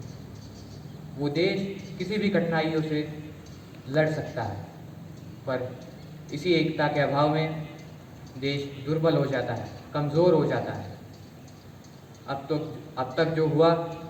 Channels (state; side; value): identical; both; correlation 1.00